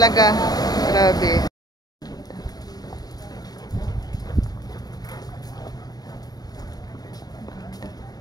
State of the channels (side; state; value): right; late; 0.19 ms